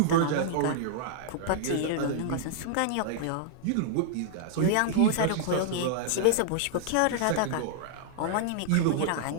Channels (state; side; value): different; both; correlation -0.01